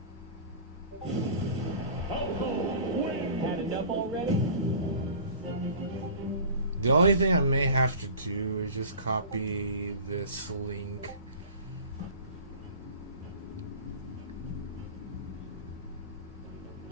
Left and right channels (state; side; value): inverted; both; correlation -0.40